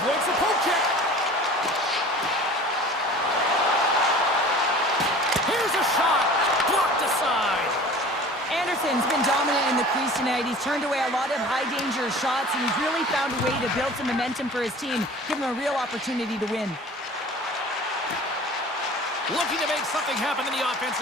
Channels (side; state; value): both; normal; correlation 0.43